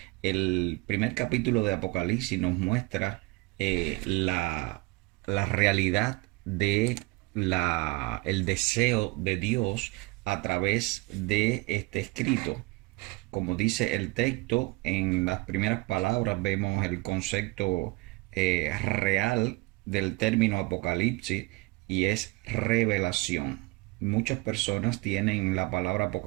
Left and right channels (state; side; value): quieter; left; 23.8 dB